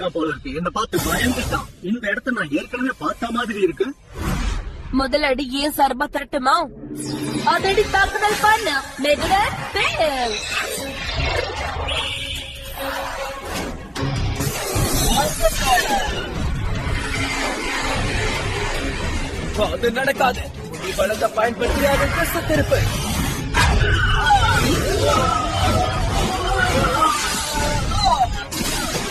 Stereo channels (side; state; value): both; identical; correlation 1.00